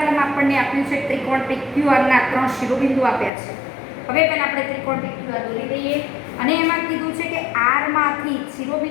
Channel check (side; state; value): right; drops out; at 3.3 s